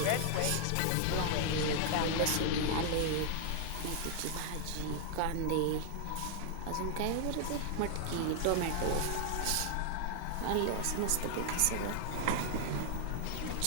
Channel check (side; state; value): both; different; correlation 0.00